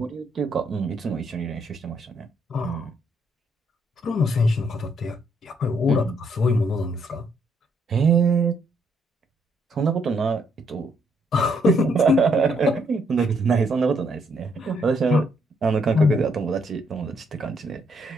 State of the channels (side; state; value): both; normal; correlation 0.72